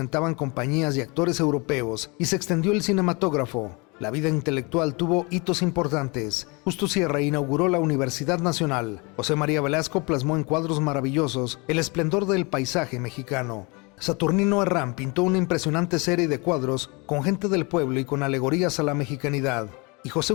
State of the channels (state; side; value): quieter; right; 28.8 dB